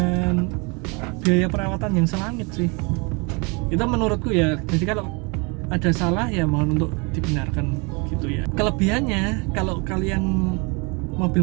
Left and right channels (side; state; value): left; quieter; 30.4 dB